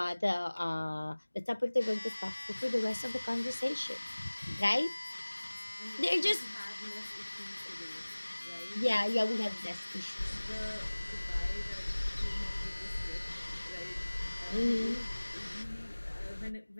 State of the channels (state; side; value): inverted; both; correlation -1.00